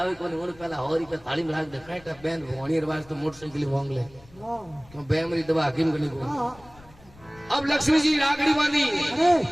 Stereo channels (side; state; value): left; noise; rumble, 24 dB below the sound